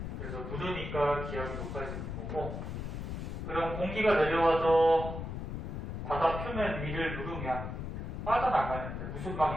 그래서 누르니까 기압이 높아지는 거고. 그럼 공기가 내려와서 바다 표면 위를 누르면 빠져나가는데 무슨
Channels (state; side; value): noise; left; rumble, 5 dB below the sound